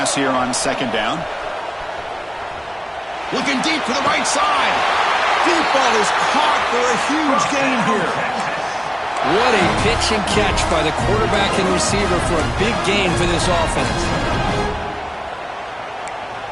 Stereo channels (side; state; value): both; identical; correlation 1.00